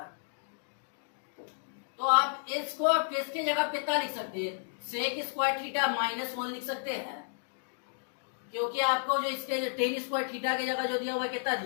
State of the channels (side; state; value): right; silent; digital silence